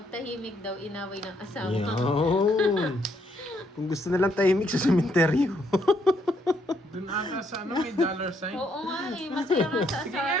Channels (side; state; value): both; normal; correlation 0.72